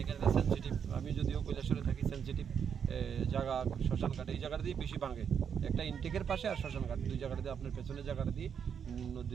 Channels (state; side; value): quieter; left; 7.5 dB